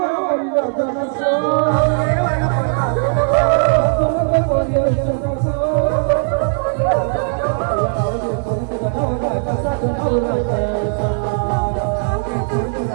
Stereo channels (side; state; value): left; silent; 67 dB below the other